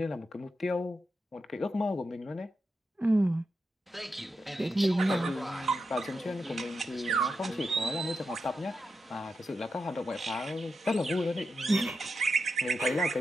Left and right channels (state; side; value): normal; both; correlation 0.87